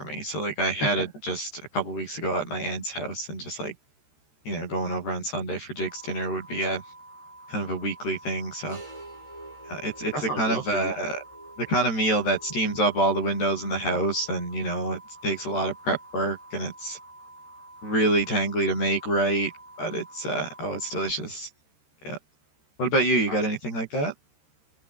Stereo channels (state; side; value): late; right; 13 ms